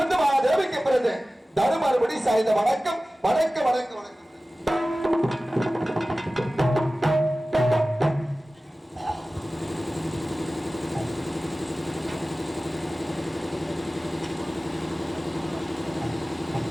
தேவிக்கு பிறந்த தருமபடி சாய்ந்த வணக்கம் வணக்கம் வணக்கம் வணக்கம்.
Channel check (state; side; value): normal; both; correlation 0.96